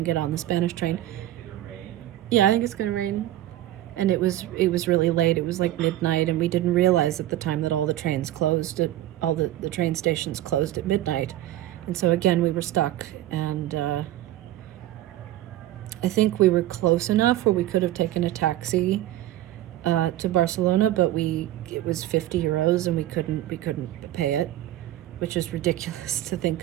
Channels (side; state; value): left; quieter; 14.2 dB